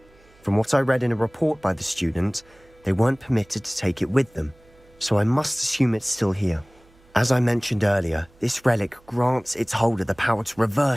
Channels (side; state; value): right; noise; hum, 30 dB below the sound